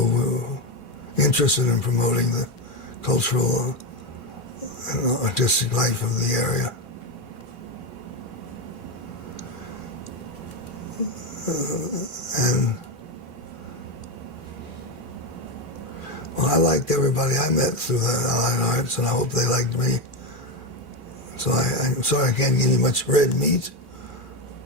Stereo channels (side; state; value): both; normal; correlation 0.12